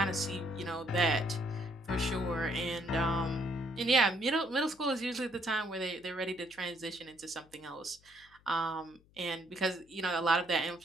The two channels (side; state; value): left; noise; hum, 29 dB below the sound